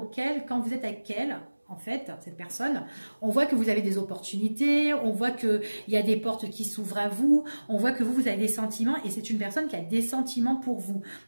quand vous êtes avec elle... En fait, cette personne, on voit que vous avez des opportunités, on voit qu'il y a des portes qui s'ouvrent à vous, on voit que vous avez des sentiments et c'est une personne qui a des sentiments pour vous.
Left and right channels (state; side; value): inverted; both; correlation -1.00